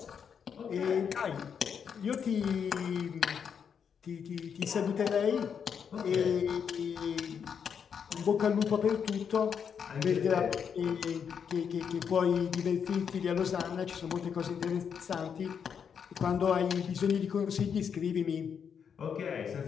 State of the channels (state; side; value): quieter; right; 7.2 dB